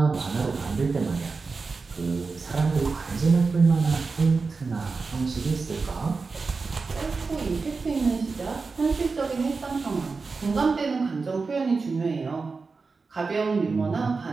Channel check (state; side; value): quieter; left; 4.4 dB